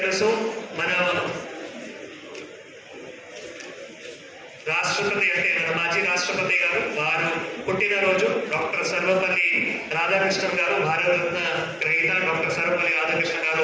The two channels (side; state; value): both; identical; correlation 1.00